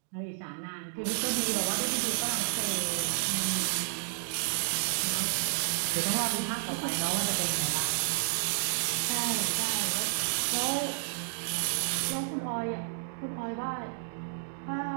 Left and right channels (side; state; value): left; silent; digital silence